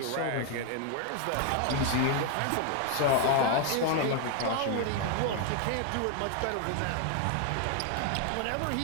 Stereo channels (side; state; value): both; different; correlation 0.00